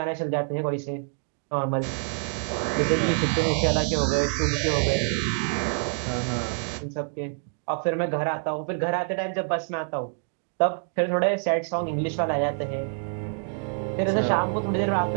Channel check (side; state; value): left; silent; 61 dB below the other